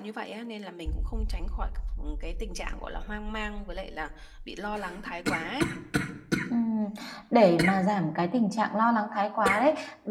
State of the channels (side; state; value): both; identical; correlation 1.00